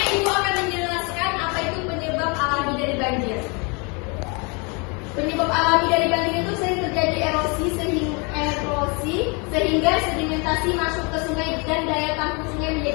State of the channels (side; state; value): right; quieter; 31.5 dB